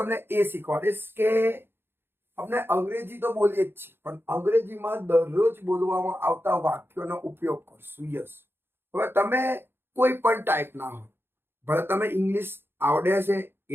ए शीखवाड़ीश के अपने अंग्रेजी तो बोलीए ज छे पण अंग्रेजी में दररोज बोलवामां आवता वाक्योनो उपयोग करशुं। यस, हवे तमे कोई पण टाइपना हो, भले तमे इंग्लिश आवडे छे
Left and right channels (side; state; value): left; late; 0.11 ms